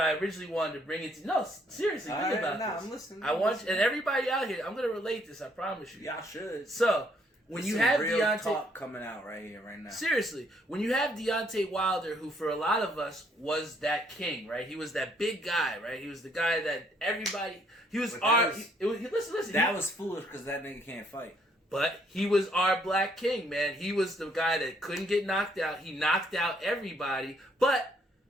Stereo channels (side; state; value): both; normal; correlation 0.67